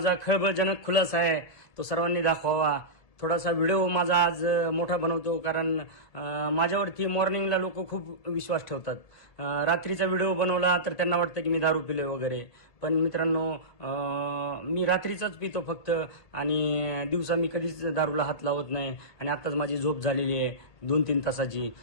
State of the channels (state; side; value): late; right; 1.6 ms